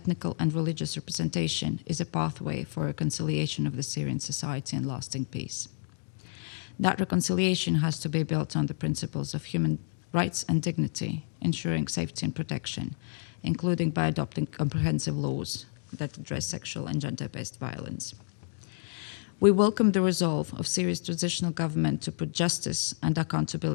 and religious representation is a pathway for reconciliation of the Syrian society and lasting peace. That reconciliation has to be built on the principles of human rights and dignity, ensuring safety and protection, including by adopting comprehensive laws that address sexual and gender-based violence. We welcome the resolve of Syria's transitional government to put justice and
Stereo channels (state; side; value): silent; right; digital silence